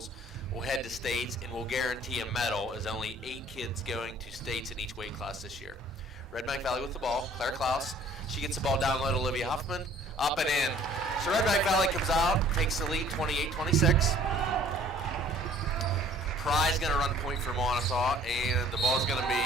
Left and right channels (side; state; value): both; normal; correlation 0.55